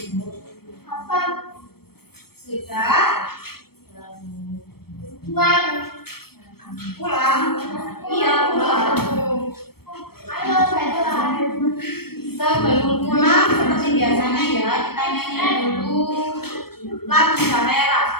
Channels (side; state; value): right; late; 0.95 ms